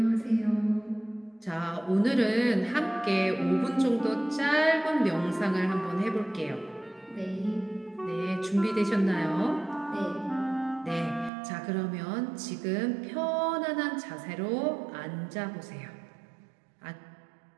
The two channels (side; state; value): left; drops out; at 11.3 s